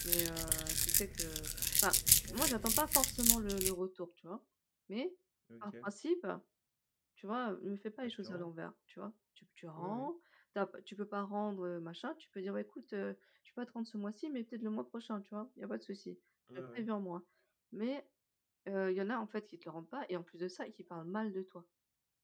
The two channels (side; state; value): both; identical; correlation 1.00